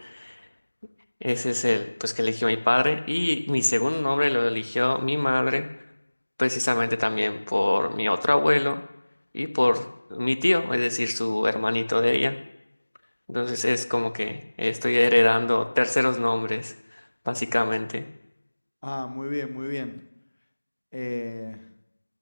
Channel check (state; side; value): inverted; both; correlation -1.00